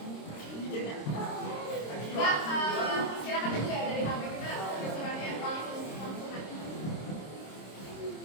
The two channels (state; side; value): late; right; 26 ms